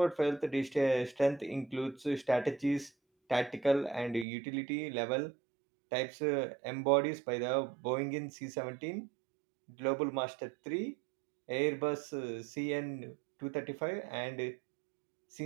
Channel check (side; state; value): left; drops out; at 4.2 s